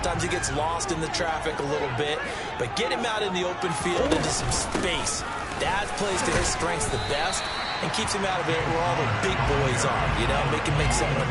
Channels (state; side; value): identical; both; correlation 1.00